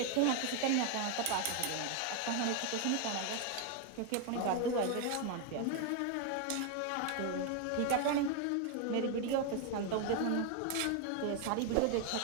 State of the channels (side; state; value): both; different; correlation 0.01